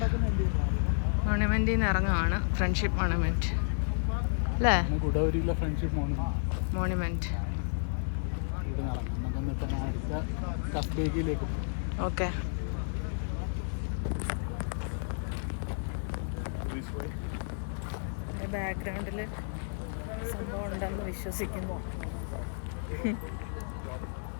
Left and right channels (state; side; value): silent; right; digital silence